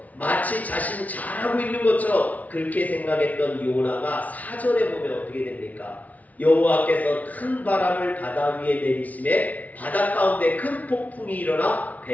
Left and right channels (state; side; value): late; right; 0.072 ms